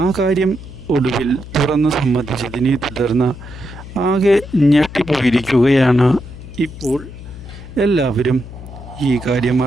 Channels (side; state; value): left; noise; hum, 14 dB below the sound